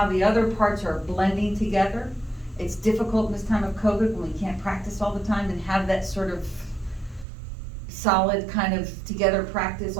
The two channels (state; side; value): drops out; left; at 7.2 s